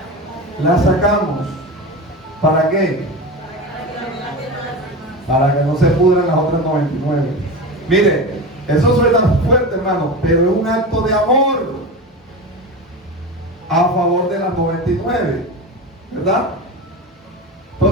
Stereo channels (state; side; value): normal; both; correlation 0.25